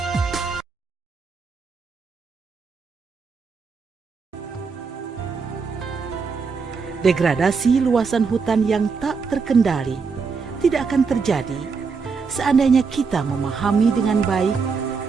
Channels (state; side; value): quieter; left; 5.1 dB